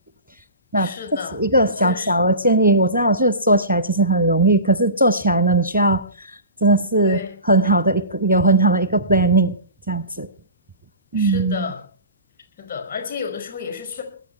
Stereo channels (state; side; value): inverted; both; correlation -0.32